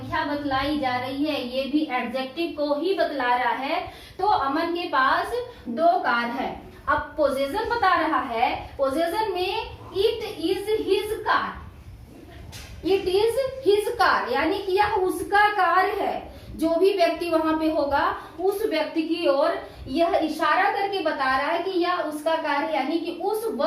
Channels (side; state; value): both; identical; correlation 1.00